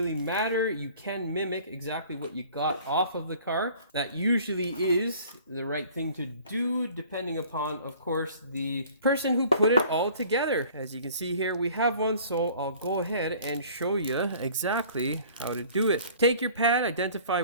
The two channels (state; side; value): inverted; both; correlation -0.50